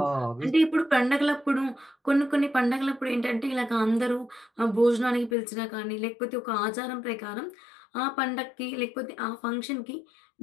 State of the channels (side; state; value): right; drops out; at 5.4 s